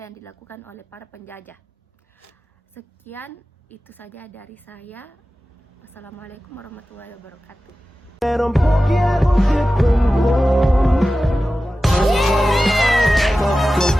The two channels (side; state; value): both; normal; correlation 0.95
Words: yang dilakukan oleh para penjajah. Sekian, itu saja dari saya. Wassalamualaikum warahmatullahi wabarakatuh. Meron pogiago 싶은 곳